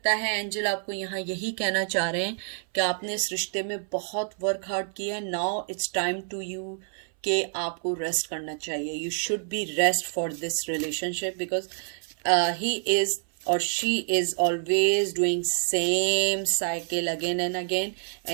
है एंजल आपको यहाँ यही कहना चाह रहे हैं कि आपने इस रिश्ते में बहुत वर्क हार्ड किया है, now it's time to you कि आपको रेस्ट करना चाहिए। You should be rest for this relationship, because he is or she is always doing same cycle again and again,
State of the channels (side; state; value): left; silent; 59 dB below the other